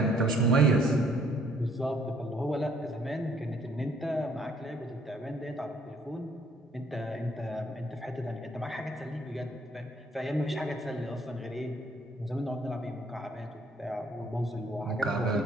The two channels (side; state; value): both; normal; correlation 0.64